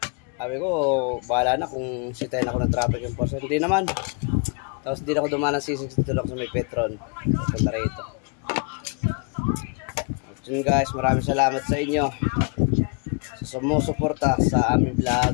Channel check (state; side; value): quieter; right; 38.4 dB